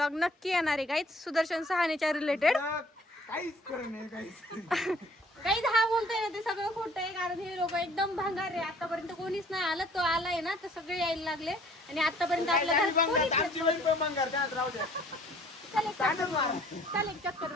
नक्की येणार आहे गाईज सुदर्शन सहानेच्या रिलेटेड. काही हा बोलतोय ना ते सगळं खोटं आहे, कारण हे लोक एकदम भंगार आहे. आतापर्यंत कोणीच नाही आलं. तो आलाय ना तर सगळे यायला लागले. आणि आतापर्यंत आपल्या घरात चाल एक चक्कर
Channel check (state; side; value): normal; both; correlation 0.56